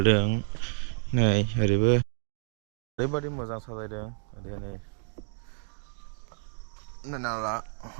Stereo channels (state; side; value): silent; left; digital silence